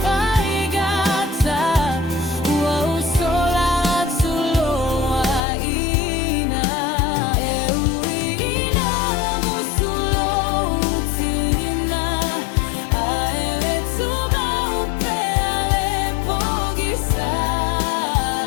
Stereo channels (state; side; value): drops out; right; at 5.4 s